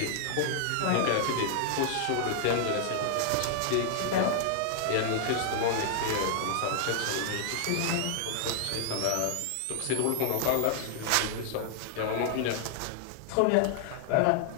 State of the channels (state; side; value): different; both; correlation -0.01